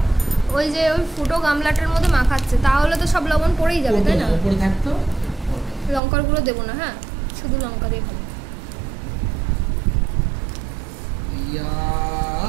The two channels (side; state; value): left; drops out; at 6.0 s